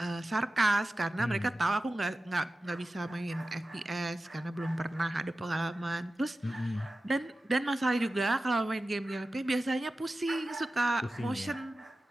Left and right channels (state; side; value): normal; both; correlation 0.94